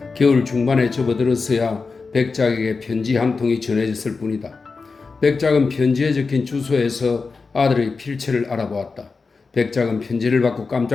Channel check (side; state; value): right; quieter; 4.4 dB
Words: 겨울 중반에 접어들었어야 백작에게 편지 한 통이 전해졌을 뿐이다. 백작은 편지에 적힌 주소에서 아들의 필체를 알아보았다. 백작은 편지를 받고